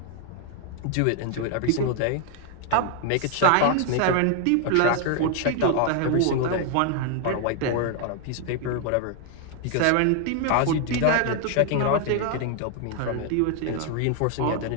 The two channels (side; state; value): both; different; correlation 0.00